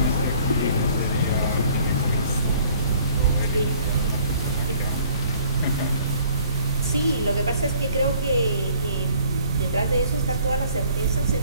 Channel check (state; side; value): inverted; both; correlation -0.56